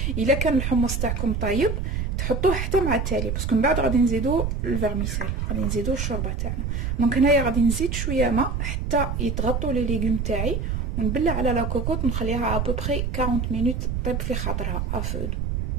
الا كان الحمص تاعكم طيب تحطوه حتى مع التالي, باسكو من بعد غادي نزيدو الفيرميسيل, غادي نزيدو الشوربه تاعنا. دونك هنايا غادي نزيد شويه ماء حتى يتغطوا لي ليغوم تاعي, ونبلع على لا كوكوط نخليها ا بوبري 40 مينوت طيب في خاطرها افودو.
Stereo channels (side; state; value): right; noise; rumble, 1 dB below the sound